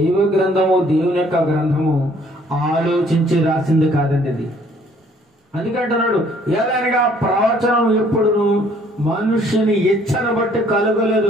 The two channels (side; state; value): both; normal; correlation 0.60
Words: గ్రంథము, దేవుని యొక్క గ్రంథము ఆలోచించి రాసింది కాదండి అది. అందుకంటున్నాడు, ఏదైనా ప్రవచనం ఎప్పుడును మనుషుని ఇచ్చను బట్టి